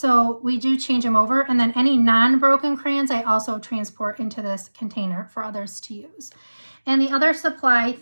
we do change them over. And then any non-broken crayons, I also transport into this container for others to use. And the other supply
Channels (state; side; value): inverted; both; correlation -1.00